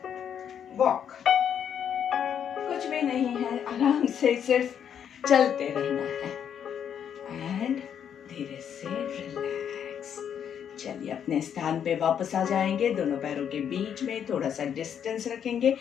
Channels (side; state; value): right; quieter; 8.5 dB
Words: वॉक। कुछ भी नहीं है, आराम से सिर्फ चलते रहना है एंड धीरे से रिलैक्स। चलिए अपने स्थान पे वापस आ जाएंगे। दोनों पैरों के बीच में थोड़ा सा डिस्टेंस रखेंगे,